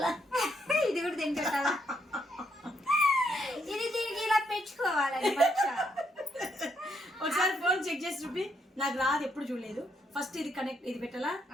ఇది కూడా దీనికి పెట్టాలా? ఇది దీనికి ఇలా పెట్టుకోవాలి. ఒకసారి ఫోన్ చెక్ చేసి చూపి, నాకు రాదు, ఎప్పుడు చూడలేదు. ఫస్ట్ ఇది కనెక్ట్, ఇది పెట్టాలా?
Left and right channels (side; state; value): both; normal; correlation 0.75